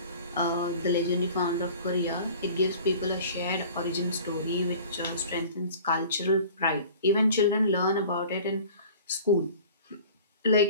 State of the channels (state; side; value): inverted; both; correlation -0.44